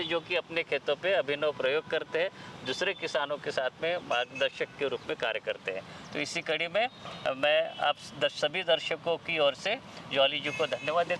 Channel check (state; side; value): identical; both; correlation 1.00